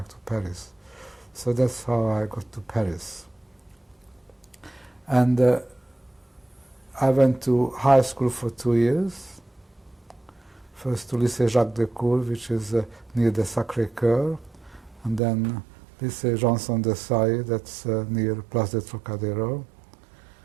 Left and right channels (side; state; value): left; drops out; at 15.2 s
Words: to Paris. So that's how I got to Paris. And I went to high school for 2 years. First to Lycée Jacques Decour, which is near the Sacré-Cœur, and then Lycée Janson de Sailly, that's near Place de Trocadéro,